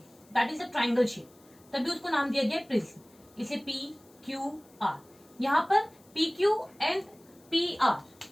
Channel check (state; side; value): noise; left; hiss, 29 dB below the sound